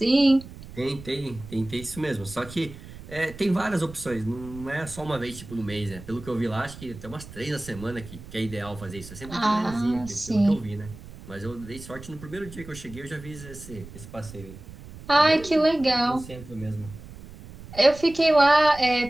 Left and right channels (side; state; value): right; noise; rumble, 16 dB below the sound